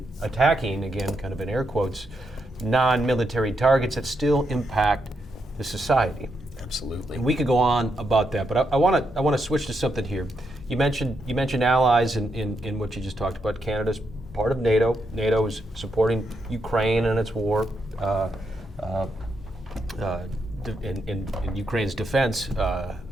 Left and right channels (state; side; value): normal; both; correlation 0.81